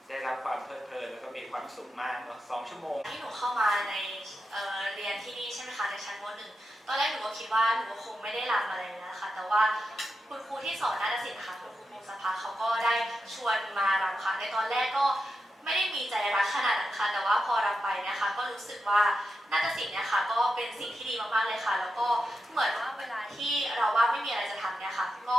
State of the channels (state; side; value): normal; both; correlation 0.88